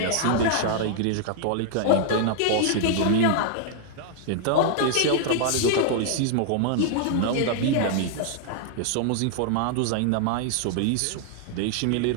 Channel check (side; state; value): both; different; correlation -0.01